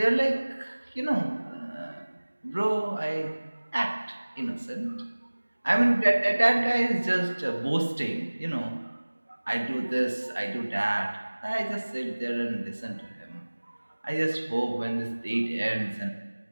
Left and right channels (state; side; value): inverted; both; correlation -1.00